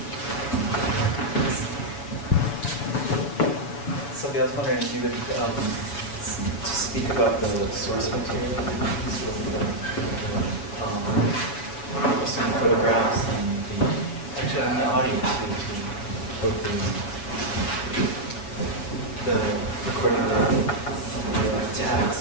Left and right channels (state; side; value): late; right; 7.0 ms